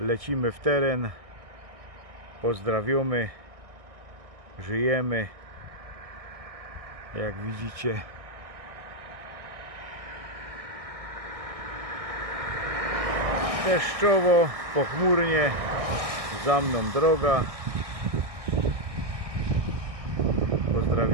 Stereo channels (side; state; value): left; late; 1.6 ms